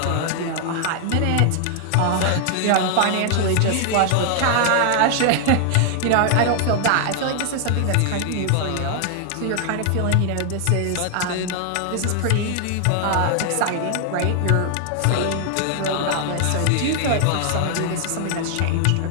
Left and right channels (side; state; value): both; different; correlation 0.00